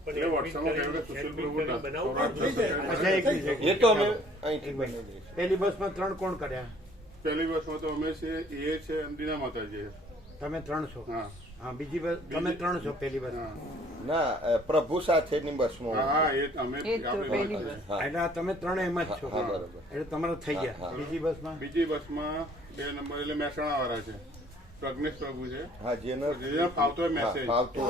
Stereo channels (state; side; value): normal; both; correlation 0.57